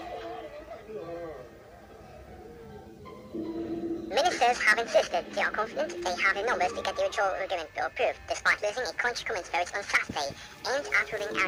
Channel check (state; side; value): identical; both; correlation 1.00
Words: Ministers have insisted they are confident they have the numbers to get the withdrawal agreement bill approved, despite losing a crunch comments vote on Saturday aimed at ruling